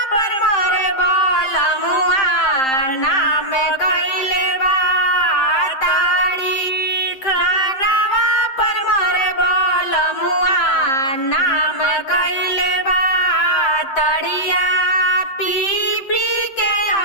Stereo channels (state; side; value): late; right; 7.7 ms